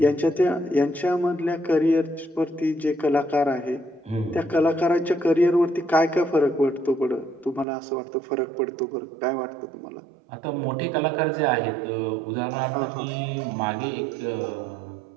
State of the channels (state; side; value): drops out; left; at 7.7 s